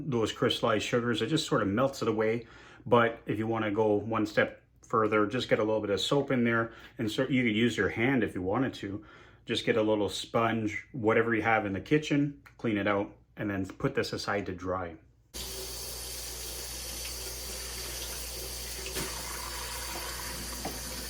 crystallized sugars. It just sort of melts it away. But if you want to go one step further, just get a little bit of soap in there, and so you could use your hand if you wanted to. Just get a little sponge, whatever you have in the kitchen, clean it out, and then put this aside to dry.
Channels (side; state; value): both; identical; correlation 1.00